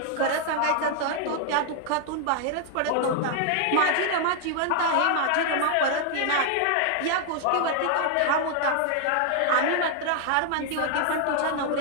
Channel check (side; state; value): both; different; correlation 0.00